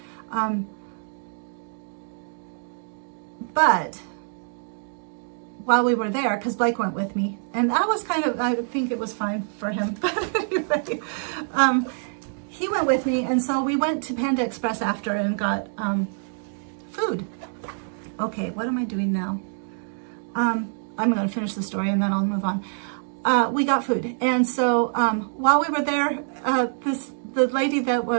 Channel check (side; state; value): left; silent; digital silence